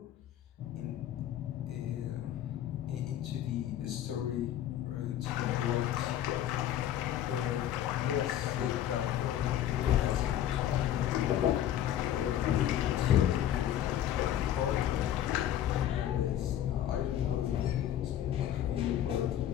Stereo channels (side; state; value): right; quieter; 11.4 dB